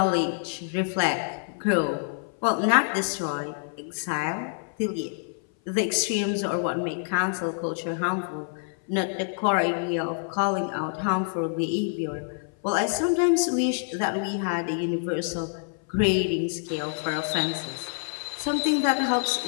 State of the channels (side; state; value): right; silent; 57 dB below the other